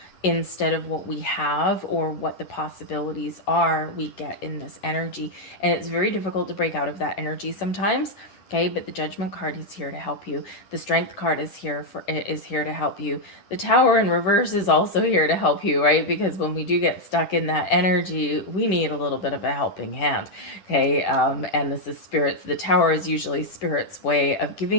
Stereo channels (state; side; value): late; right; 11 ms